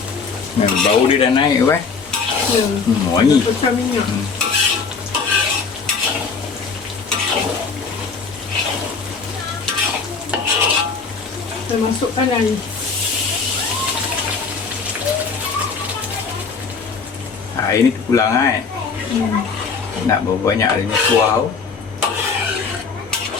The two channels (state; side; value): quieter; right; 5.1 dB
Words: Bau dia dah naik wangi. Pecah minyak. Kita masukkan air. Air ni terpulang Nak berapa banyak airnya kuah.